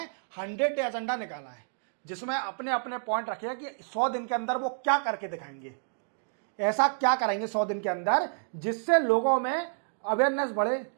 100 डे एजेंडा निकाला है, जिसमें अपने अपने पॉइंट रखे हैं कि 100 दिन के अंदर वो क्या करके दिखाएंगे, ऐसा क्या करेंगे 100 दिन के अंदर जिससे लोगों में अवेयरनेस बढ़े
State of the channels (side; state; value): left; silent; digital silence